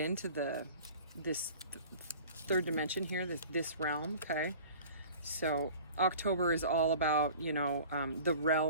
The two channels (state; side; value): inverted; both; correlation -0.43